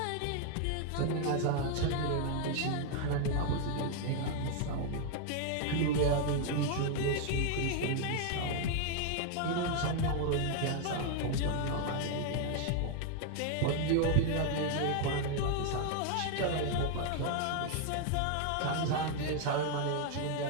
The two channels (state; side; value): different; both; correlation 0.00